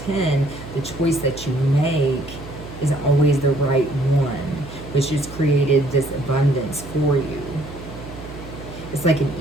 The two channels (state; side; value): noise; right; hum, 13 dB below the sound